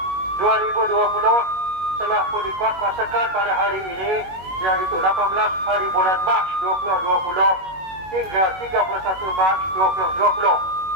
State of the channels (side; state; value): left; late; 21 ms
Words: 2020 telah pun dikuatkuasakan pada hari ini, iaitu 18 hari bulan Mac 2020 hingga 31 Mac 2020.